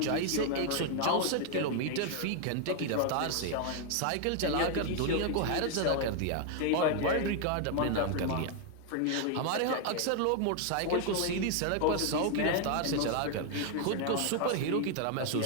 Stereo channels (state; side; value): different; both; correlation 0.00